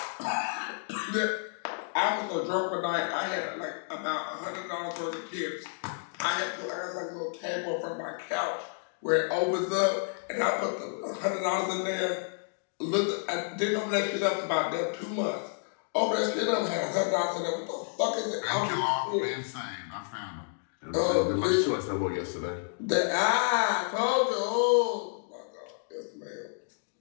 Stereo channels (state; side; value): silent; right; digital silence